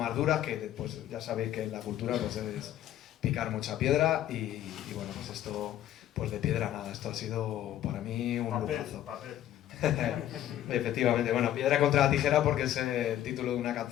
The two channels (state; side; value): quieter; right; 12.3 dB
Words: duras, que pues ya sabéis que en la cultura pues es picar mucha piedra, y bueno, pues esto, pues de piedra nada, esto ha sido para mí un lujazo. Efectivamente, bueno, piedra contra la tijera porque es el título de una